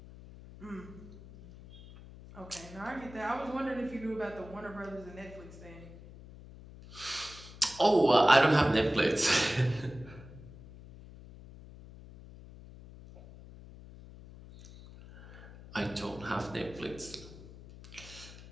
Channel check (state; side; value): noise; left; hum, 17 dB below the sound